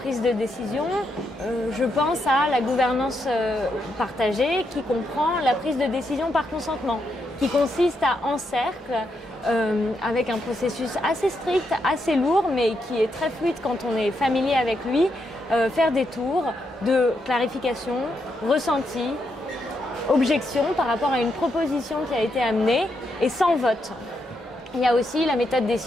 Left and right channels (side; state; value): both; normal; correlation 0.81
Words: de décision, je pense à la gouvernance partagée qui comprend la prise de décision par consentement, qui consiste à, en cercle, avec un processus assez strict, assez lourd, mais qui est très fluide quand on est familier avec lui, faire des tours de clarification, ressenti, objection par rapport à une proposition qui a été amenée et sans vote. Il y a aussi la méthode des